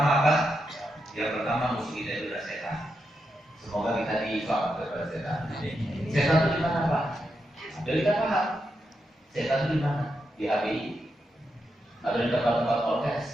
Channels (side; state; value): both; normal; correlation 0.85